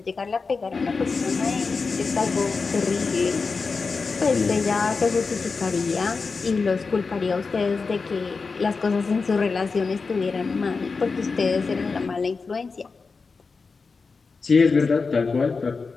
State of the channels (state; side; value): quieter; right; 4.5 dB